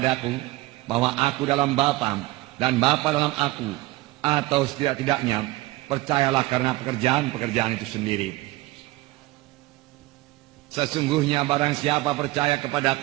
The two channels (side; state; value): left; quieter; 19.4 dB